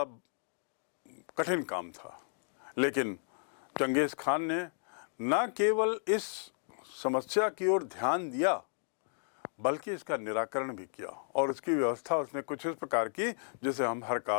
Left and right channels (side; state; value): right; silent; digital silence